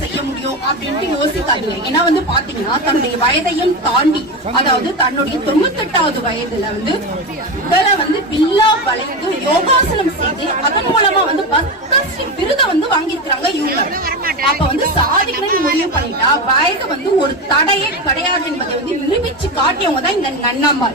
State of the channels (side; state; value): both; normal; correlation 0.18